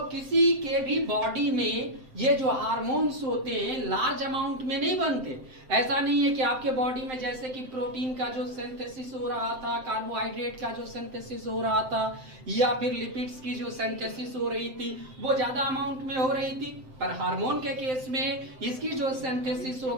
किसी के भी बॉडी में ये जो हार्मोन्स होते हैं लार्ज अमाउंट में नहीं बनते। ऐसा नहीं है कि आपके बॉडी में जैसे कि प्रोटीन का जो सिंथेसिस हो रहा था, कार्बोहाइड्रेट का जो सिंथेसिस हो रहा था, या फिर लिपिड्स की जो सिंथेसिस हो रही थी वो ज्यादा अमाउंट में हो रही थी, पर हार्मोन के केस में इसकी जो सिंथेसिस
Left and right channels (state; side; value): late; left; 7.7 ms